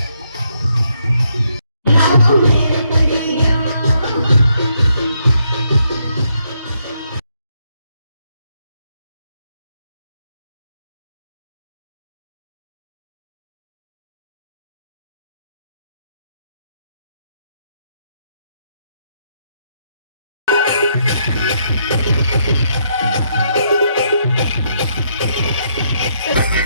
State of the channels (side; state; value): both; inverted; correlation -0.75